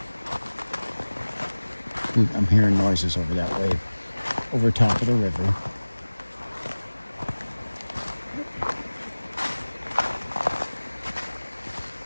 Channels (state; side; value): inverted; both; correlation -1.00